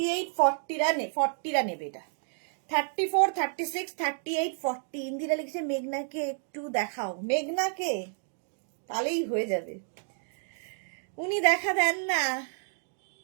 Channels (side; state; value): left; silent; 58 dB below the other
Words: 40 নেবে এটা। 34, 36, 38, 40। ইন্দিরা লিখেছে মেঘনাকে একটু দেখাও। মেঘনাকে তাহলেই হয়ে যাবে, উনি দেখা দেন না।